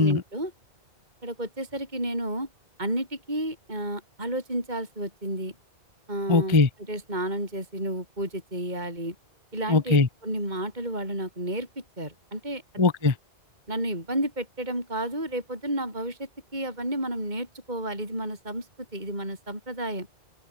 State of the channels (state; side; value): late; left; 2.2 ms